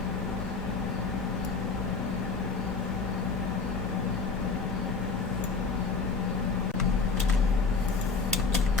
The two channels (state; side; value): quieter; right; 4.5 dB